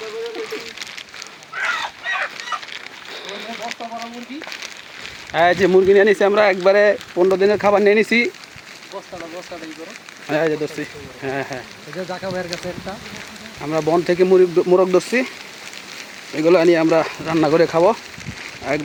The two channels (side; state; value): both; identical; correlation 1.00